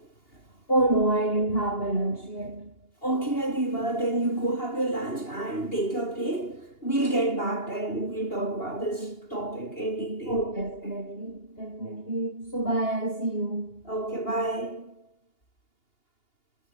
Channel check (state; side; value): late; right; 2.8 ms